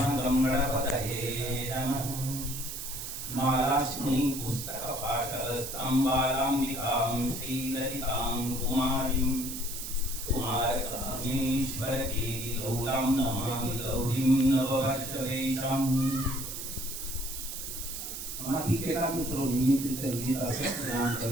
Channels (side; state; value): right; noise; hiss, 7 dB below the sound